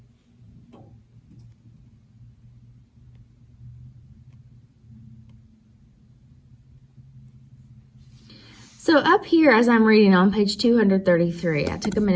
So up here, as I'm reading on page 233, I took a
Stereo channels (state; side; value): identical; both; correlation 1.00